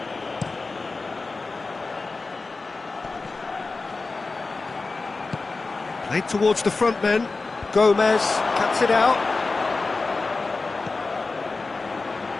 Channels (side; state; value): right; quieter; 3.8 dB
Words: Played towards the front men. Gomez cuts it out.